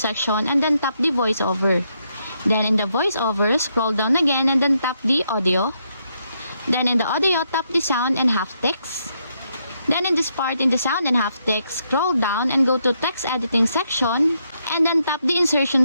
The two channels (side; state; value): both; inverted; correlation -0.78